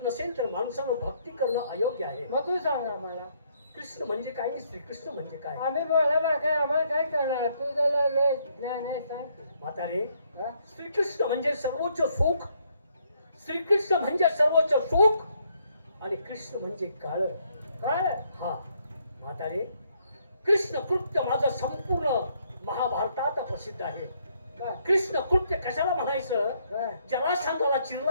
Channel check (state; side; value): inverted; both; correlation -0.71